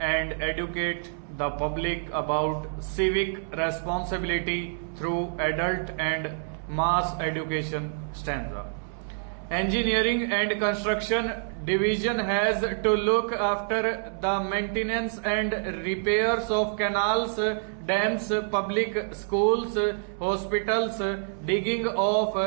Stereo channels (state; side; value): silent; left; 60 dB below the other